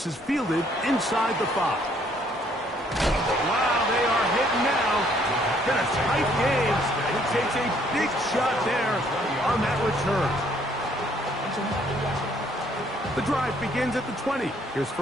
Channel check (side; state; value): both; normal; correlation 0.65